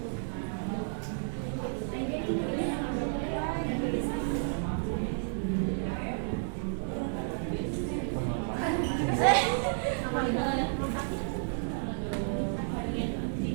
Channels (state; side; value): silent; left; digital silence